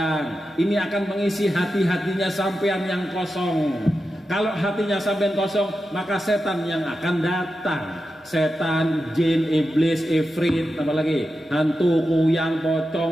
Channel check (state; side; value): normal; both; correlation 0.90